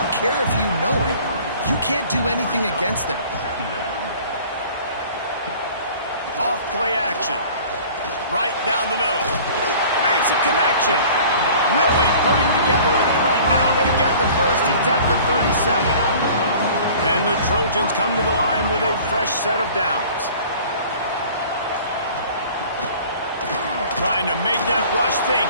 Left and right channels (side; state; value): both; inverted; correlation -0.47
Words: care if you know it. You can't do anything against them. Off play action. Right down the middle. Makes a connection. Really putting together a threat now. They get the first. It's at the 37. And the Trojans come to the line with a fresh set of downs. Trying to make that rush think